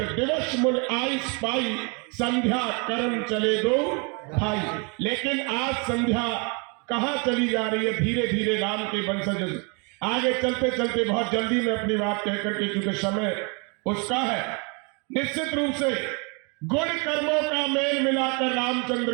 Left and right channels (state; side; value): quieter; left; 33.4 dB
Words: दिवस मुन आयुष पाई, संध्या कर्म चले दो भाई। लेकिन आज संध्या कहाँ चली जा रही है, धीरे धीरे राम के वंशज आगे चलते चलते बहुत जल्दी में अपनी बात कहकर के, क्योंकि समय उसका है। निश्चित रूप से गुण कर्मों का मेल मिलाकर